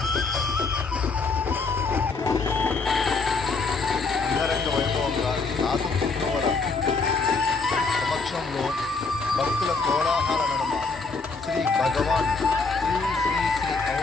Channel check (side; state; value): right; quieter; 4.2 dB